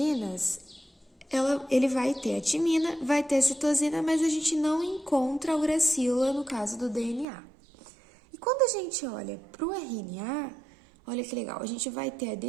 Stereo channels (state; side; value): drops out; left; at 7.2 s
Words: ele vai ter a timina, vai ter a citosina, mas a gente não encontra a uracila no caso do DNA. E quando a gente olha para o RNA, olha que legal, a gente vai ter a